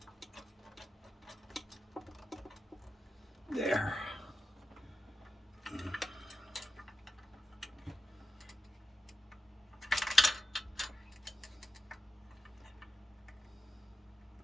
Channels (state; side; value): normal; both; correlation 0.88